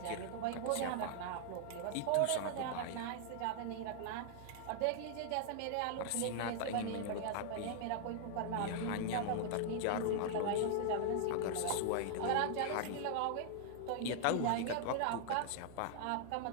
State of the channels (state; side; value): different; both; correlation -0.01